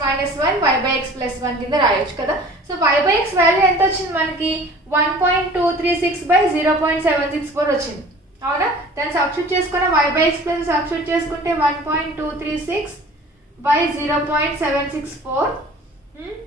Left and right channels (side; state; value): both; normal; correlation 0.46